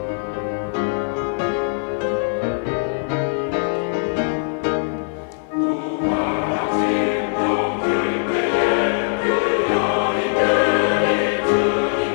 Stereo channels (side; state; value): right; silent; 58 dB below the other